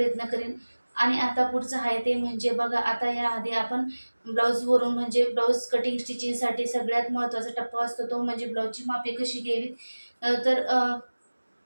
करेन. आणि आता पुढचं आहे ते म्हणजे बघा, आता याआधी आपण ब्लाऊजवरून म्हणजे ब्लाऊज कटिंग स्टिचिंगसाठी सगळ्यात महत्त्वाचा टप्पा असतो तो म्हणजे ब्लाऊजची मापे कशी घ्यावीत.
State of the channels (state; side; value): inverted; both; correlation -1.00